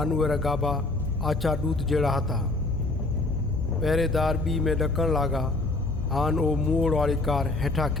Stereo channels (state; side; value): quieter; right; 3.1 dB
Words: उहे गाबा आछा दूत जहिड़ा हता। पहरेदार बी में ॾकण लॻा। आन ओ मोड़ वाली कार हेठां